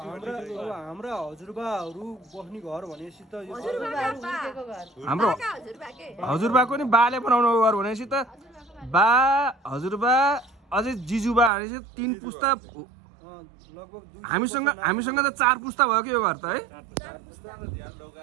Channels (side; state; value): left; drops out; at 11.5 s